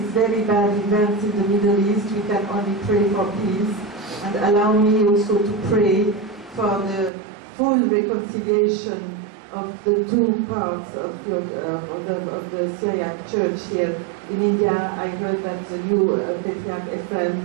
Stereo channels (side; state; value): left; drops out; at 7.1 s